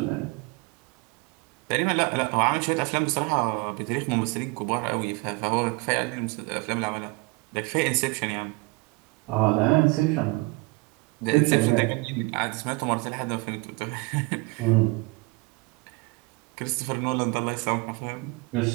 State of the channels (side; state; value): left; quieter; 26.3 dB